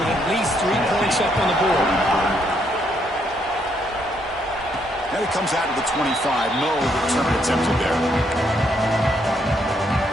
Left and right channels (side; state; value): both; normal; correlation 0.73